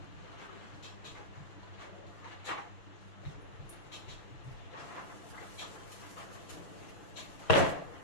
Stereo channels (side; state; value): right; late; 6.3 ms